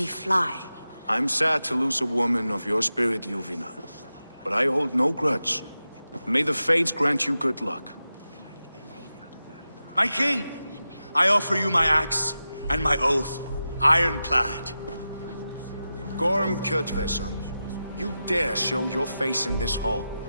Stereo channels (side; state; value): both; inverted; correlation -0.92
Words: fly. I'm sad to lose a woman of your spirit, Ljuvina. But I hold no grudge. May the fates grant you good luck. My king, I offer you my axe and my oath, ironclad. Gorm Kjotveson, you dare show your face in this hall.